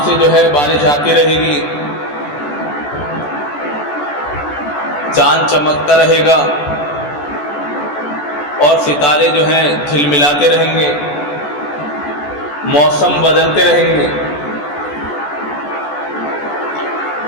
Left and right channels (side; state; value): right; late; 14 ms